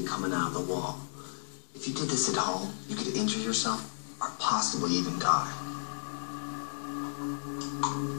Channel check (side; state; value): right; silent; digital silence